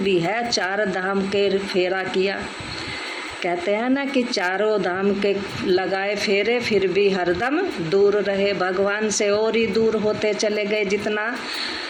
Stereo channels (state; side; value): identical; both; correlation 1.00